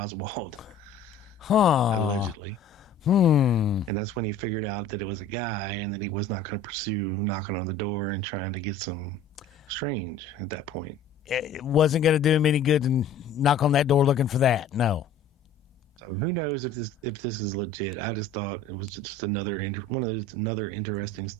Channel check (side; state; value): right; quieter; 4.0 dB